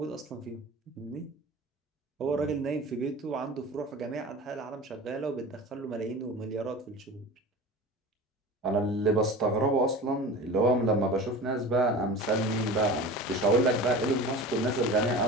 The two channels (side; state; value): both; normal; correlation 0.34